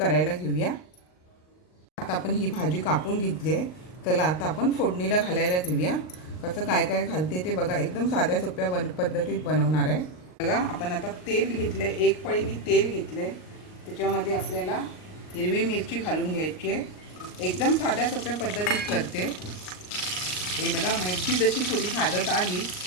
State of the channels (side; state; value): right; late; 39 ms